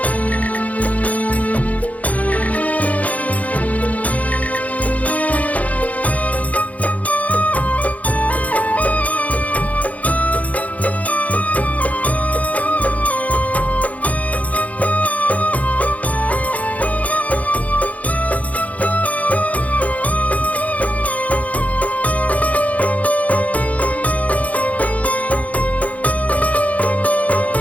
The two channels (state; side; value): late; right; 0.070 ms